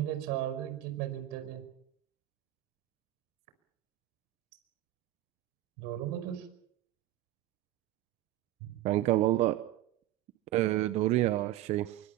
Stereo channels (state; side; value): quieter; left; 14.6 dB